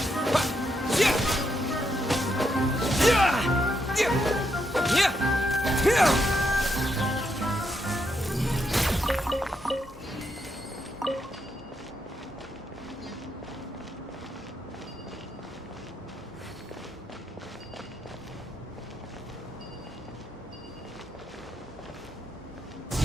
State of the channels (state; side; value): normal; both; correlation 0.80